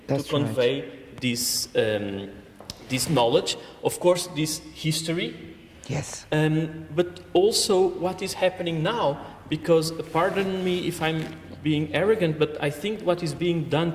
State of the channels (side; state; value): both; identical; correlation 1.00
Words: to convey this knowledge. Of course, this history. Yes. But also what is happening now, because pardon me if I'm being arrogant, but I think what is being